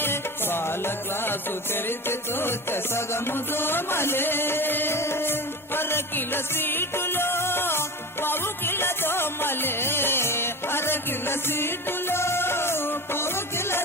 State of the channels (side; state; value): both; normal; correlation 0.28